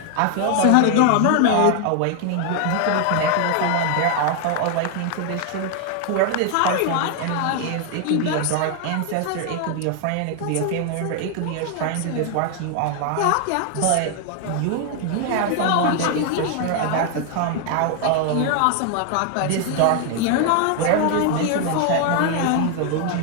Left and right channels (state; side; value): different; both; correlation 0.00